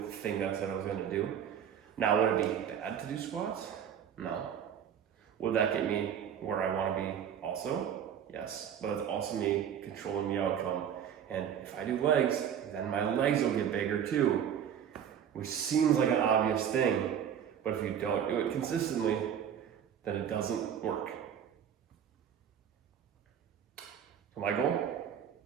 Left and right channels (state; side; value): quieter; left; 8.8 dB